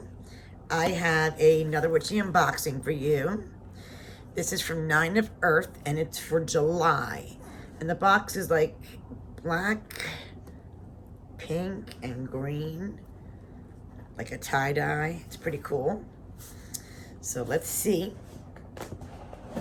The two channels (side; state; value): both; identical; correlation 1.00